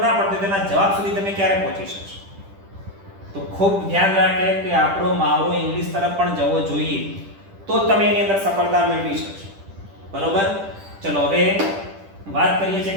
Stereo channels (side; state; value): left; late; 10 ms